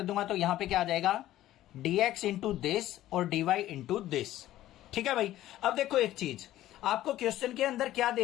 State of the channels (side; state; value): right; quieter; 14.2 dB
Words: दूंगा तो यहां पे क्या आ जाएगा, dx इंटू दिस और dy इंटू दिस। ठीक है भाई। अब देखो एक चीज, आपको क्वेश्चन के अंदर क्या दे